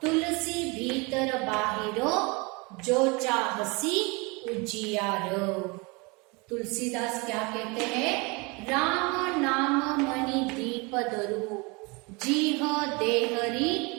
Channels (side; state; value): left; quieter; 28.0 dB